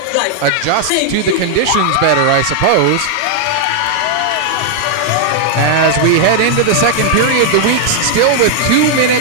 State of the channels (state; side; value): different; both; correlation 0.00